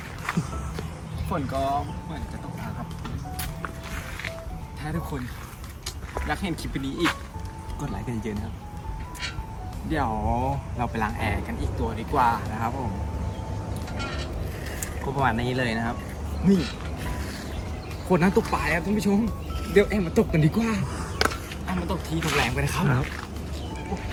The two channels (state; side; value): identical; both; correlation 1.00